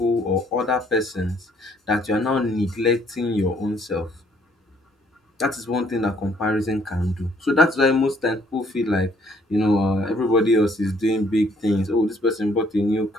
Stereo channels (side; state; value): both; normal; correlation 0.64